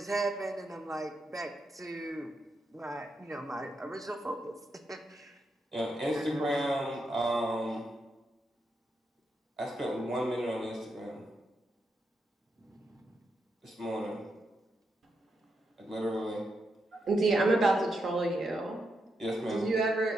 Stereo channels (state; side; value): normal; both; correlation 0.83